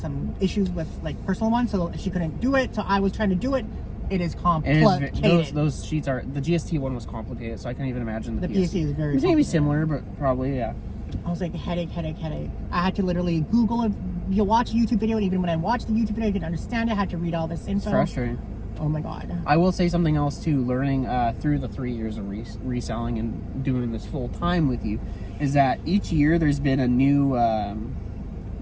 issues with like personal ones, so she couldn't do it. So I was trying to do it. It is complicated. Those sheets are, the GST one was complicated, so I can't even imagine the PST is very. It's maybe similar, but probably I was like headache. I had to literally Google it. You watch a YouTube video, and even when I watched the YouTube video, I didn't understand it. I had to read all this info. It's frustrating. Oh my god. I will say something else too. Learning through the 3 years of reselling and doing this full time with you, is that each year there's been a new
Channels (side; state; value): both; identical; correlation 1.00